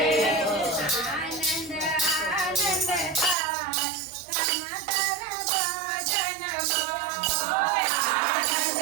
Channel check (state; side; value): drops out; left; at 3.4 s